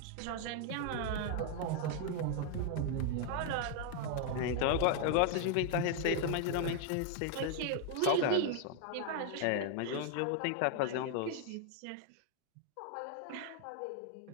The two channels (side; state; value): both; different; correlation 0.00